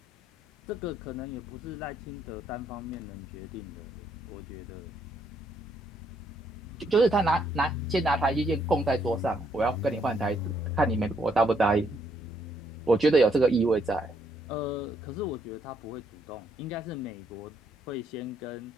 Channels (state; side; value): normal; both; correlation 0.72